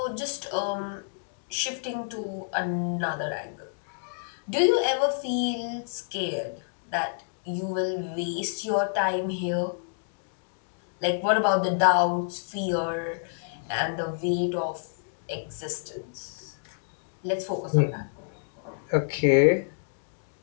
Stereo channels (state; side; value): silent; right; digital silence